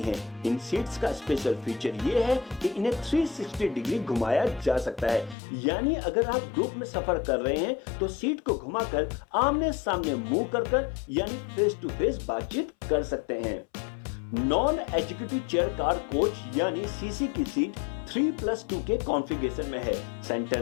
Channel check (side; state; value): right; drops out; at 5.4 s